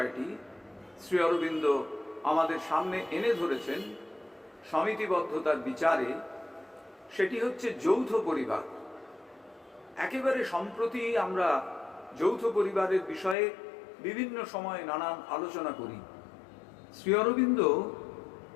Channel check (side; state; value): right; drops out; at 13.4 s